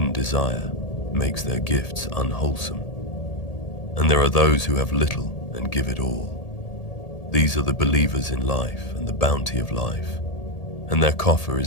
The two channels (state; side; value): late; right; 1.8 ms